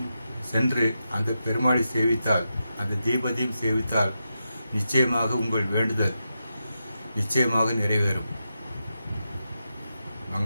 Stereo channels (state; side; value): inverted; both; correlation -0.88